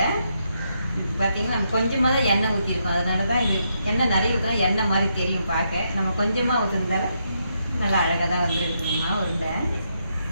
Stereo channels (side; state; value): both; inverted; correlation -0.79